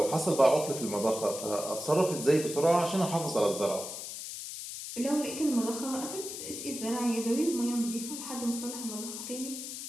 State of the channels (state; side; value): noise; left; hiss, 8 dB below the sound